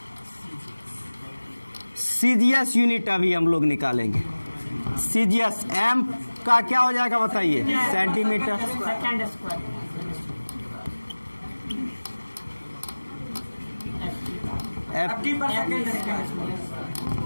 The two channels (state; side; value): inverted; both; correlation -1.00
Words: सीजीएस यूनिट अभी हम लोग निकालेंगे। सीजीएस एम का क्या हो जाएगा बताइए सेंटीमीटर,